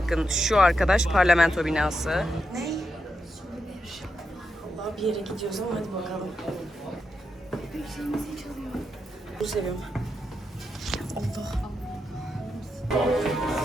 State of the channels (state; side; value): normal; both; correlation 0.86